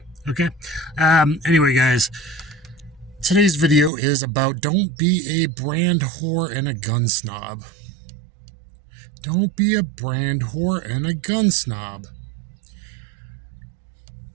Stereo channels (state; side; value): drops out; left; at 3.9 s